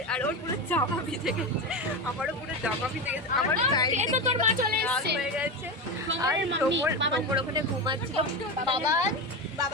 আর ওর পুরো জামা ভিজে গেছে, আমারও পুরো জামা ভিজে গেছে, আমার তোর মা চলে এসেছে হয়ে গেছে। আর তোমর ওখানে ঘুমাচ্ছিল।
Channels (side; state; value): both; normal; correlation 0.18